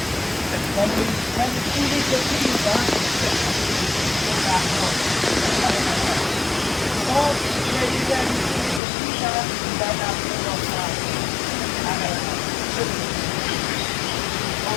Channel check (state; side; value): drops out; right; at 8.8 s